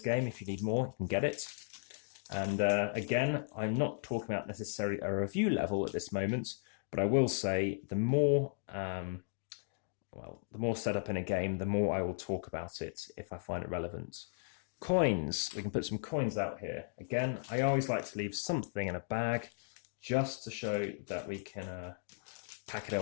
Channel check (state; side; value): silent; right; digital silence